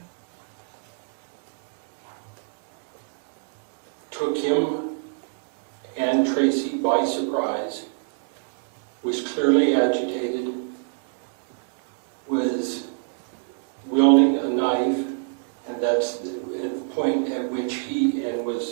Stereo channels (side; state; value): left; silent; digital silence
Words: Took him and Tracy by surprise. Was clearly agitated. Was wielding a knife, and that's at the point at which he, and